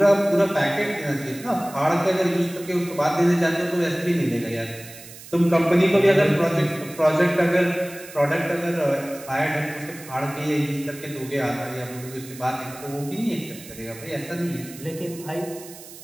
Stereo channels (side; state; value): right; noise; hiss, 17 dB below the sound